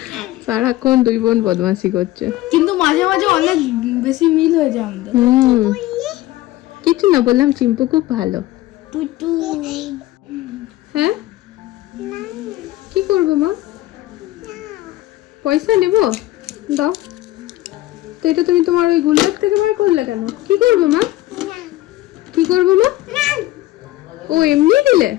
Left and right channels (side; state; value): right; quieter; 16.6 dB